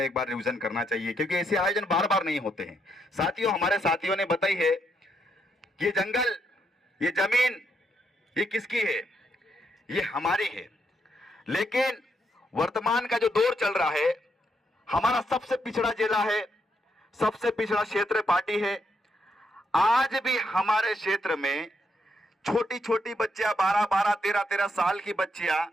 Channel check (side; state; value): both; normal; correlation 0.78